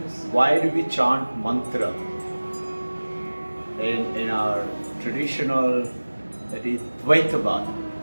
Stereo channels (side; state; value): both; inverted; correlation -1.00